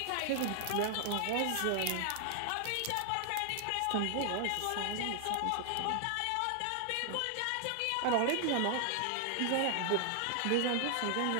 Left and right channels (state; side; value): different; both; correlation 0.00